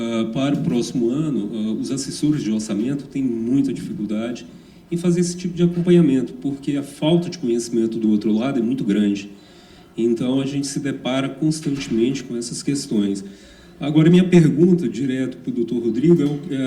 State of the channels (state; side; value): identical; both; correlation 1.00